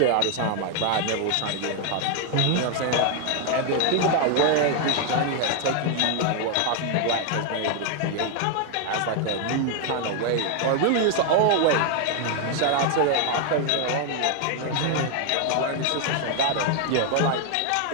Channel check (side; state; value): both; different; correlation 0.01